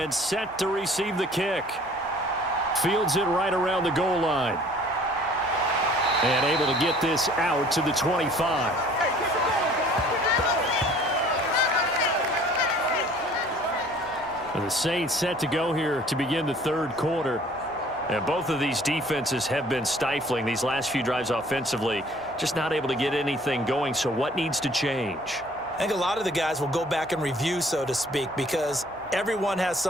set to receive the kick. Fields it right around the goal line. And able to get this out to the 25. And the Saints set to go here to begin the third quarter. And both of these defenses have been stifling these last few drives offensively. Just not able to get anything going. So what needs to change? I think a lot of the guys will go back and review, so to speak, because everyone has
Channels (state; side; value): noise; right; hum, 26 dB below the sound